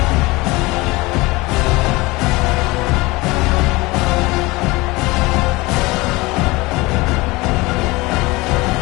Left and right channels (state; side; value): quieter; right; 22.3 dB